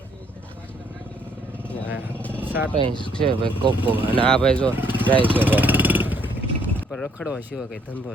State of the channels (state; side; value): normal; both; correlation 0.66